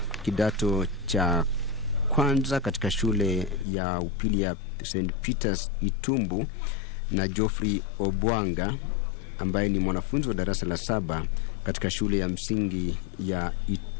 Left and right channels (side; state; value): right; drops out; at 3.7 s